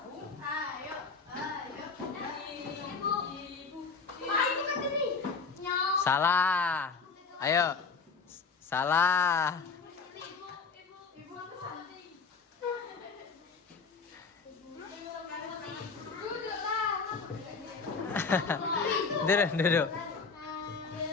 Ayo. Ibu kan tadi. Nyok. Salah. Ayo. Salah. Duduk.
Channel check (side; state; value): right; quieter; 4.9 dB